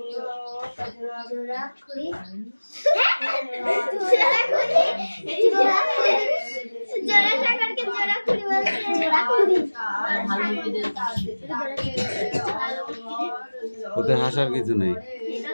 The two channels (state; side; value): inverted; both; correlation -1.00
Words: ওতে হাসার কিছু নেই,